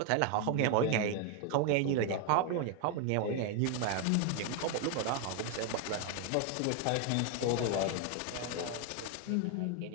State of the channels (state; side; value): different; both; correlation 0.01